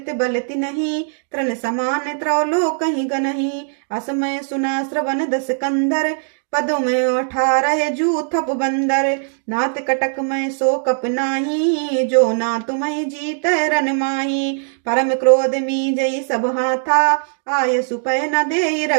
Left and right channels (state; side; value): silent; left; digital silence